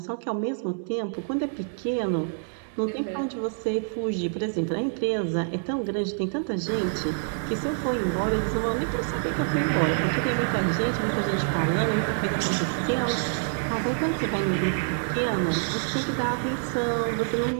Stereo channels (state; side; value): silent; left; 60 dB below the other